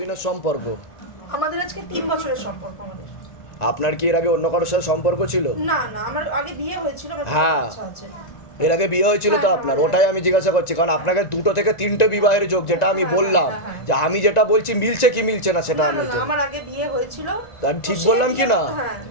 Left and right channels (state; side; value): late; right; 1.9 ms